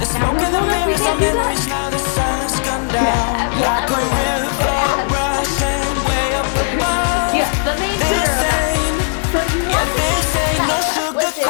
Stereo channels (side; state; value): right; silent; 67 dB below the other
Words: Now, who told us we can't do that? Yeah, everyone. Yes, the main tutor of that. So you want to keep that chest lifted,